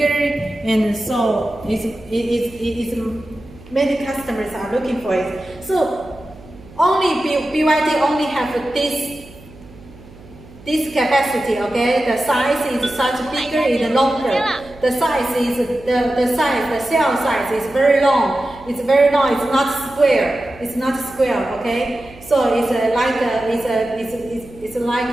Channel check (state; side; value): noise; right; hum, 21 dB below the sound